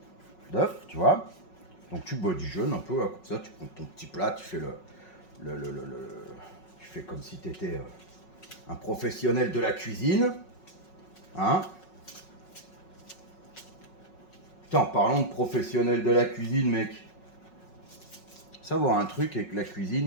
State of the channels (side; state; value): right; late; 5.4 ms